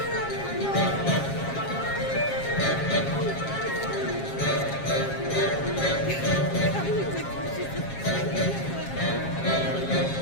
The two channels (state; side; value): late; right; 7.4 ms